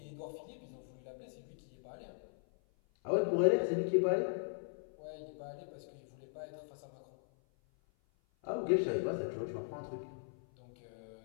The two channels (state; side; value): silent; right; 52 dB below the other